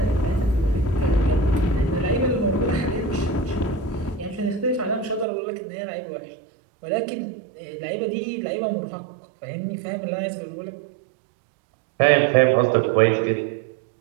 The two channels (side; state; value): left; drops out; at 5.2 s